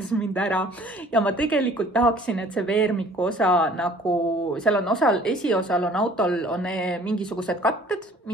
mind ära. Ja ma tegelikult tahaksin, et see veermiku osa nagu, seal on esiosal on autol on mingisugused katted,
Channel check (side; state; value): both; normal; correlation 0.52